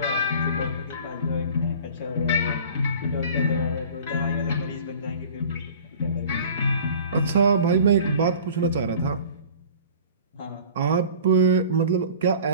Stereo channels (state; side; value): inverted; both; correlation -0.44